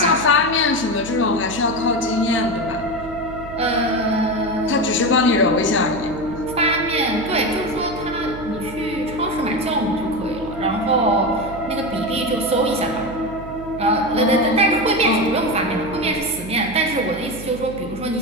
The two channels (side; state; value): right; noise; hum, 13 dB below the sound